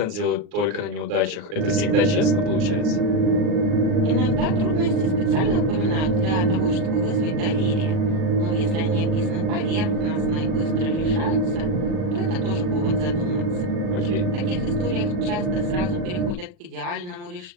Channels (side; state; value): left; late; 39 ms